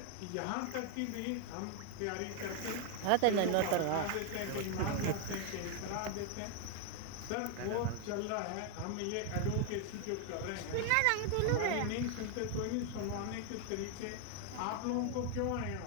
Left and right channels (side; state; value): both; different; correlation 0.00